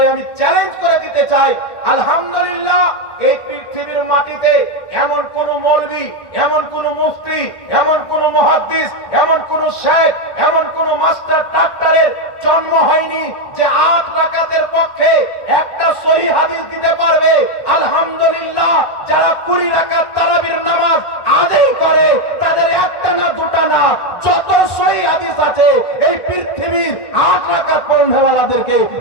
আমি চ্যালেঞ্জ করে দিতে চাই। আলহামদুলিল্লাহ, এই পৃথিবীর মাটিতে এমন কোন মৌলবী, এমন কোন মুফতি, এমন কোন মুহাদ্দিস, এমন কোন শেখ, এমন কোন মাস্টার ডাক্তারের জন্ম হয়নি যে 8 রাকাতের পক্ষে একটা সহিহ হাদিস দিতে পারবে। আলহামদুলিল্লাহ, যারা 20 রাকাত তারাবির নামাজ আদায় করে, তাদের একটা না দুটা না, যত সহিহ হাদিস আছে এই পৃথিবীর 8 রাকাত পড়নেওয়ালাদেরকে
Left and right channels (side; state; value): right; late; 1.9 ms